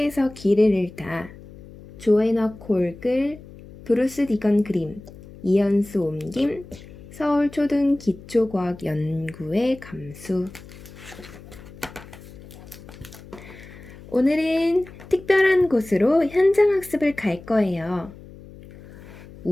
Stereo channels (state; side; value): noise; left; hum, 18 dB below the sound